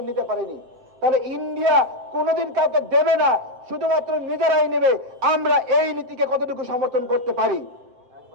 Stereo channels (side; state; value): left; late; 7.9 ms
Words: নিতে পারেনি। তাহলে ইন্ডিয়া কোনোদিন কাউকে দেবে না, শুধুমাত্র নিজেরাই নেবে। আমরা এই নীতিকে কতটুকু সমর্থন করতে পারি?